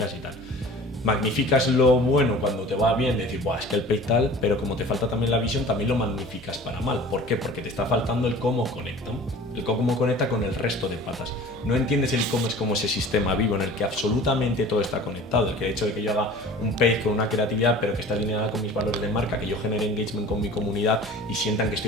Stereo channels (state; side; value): normal; both; correlation 0.43